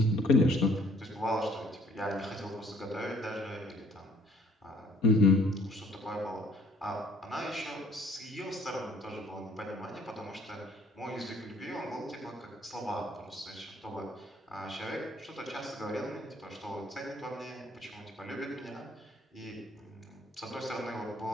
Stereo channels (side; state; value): both; normal; correlation 0.59